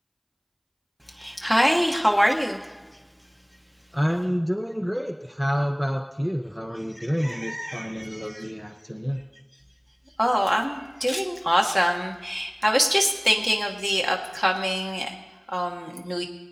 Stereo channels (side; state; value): both; identical; correlation 1.00